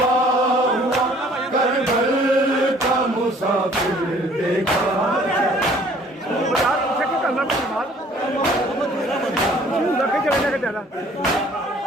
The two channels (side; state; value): both; normal; correlation 0.56